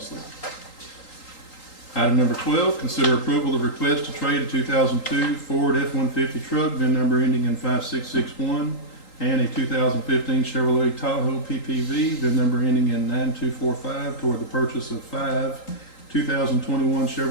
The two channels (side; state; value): right; late; 3.8 ms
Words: Item number 12, consider approval of request to trade a 2002 Ford F-150 truck, VIN number ending in 5661, and a 2015 Chevrolet Tahoe PPV, VIN number ending in 9245, toward the purchase of 5 2021